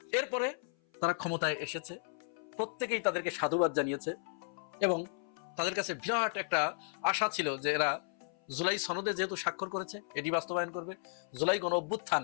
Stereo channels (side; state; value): right; silent; 55 dB below the other